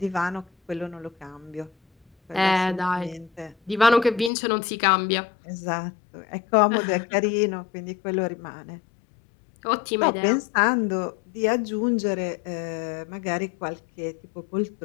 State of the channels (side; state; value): right; drops out; at 4.3 s